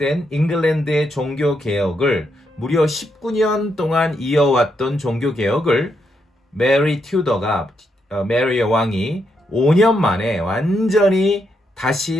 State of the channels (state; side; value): normal; both; correlation 0.80